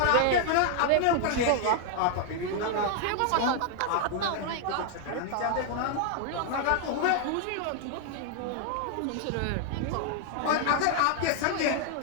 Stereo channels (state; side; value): different; both; correlation 0.00